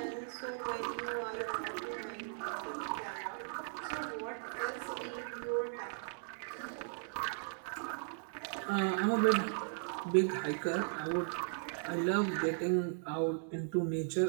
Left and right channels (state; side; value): silent; left; 53 dB below the other